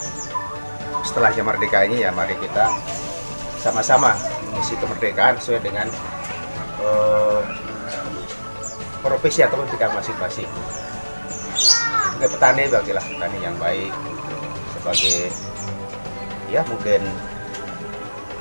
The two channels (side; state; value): both; inverted; correlation -1.00